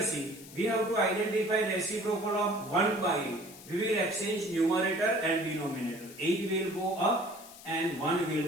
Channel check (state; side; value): noise; left; hiss, 18 dB below the sound